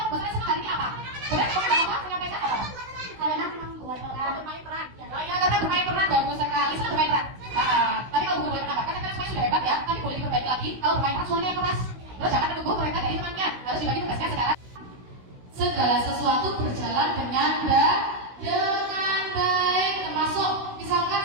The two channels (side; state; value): left; late; 16 ms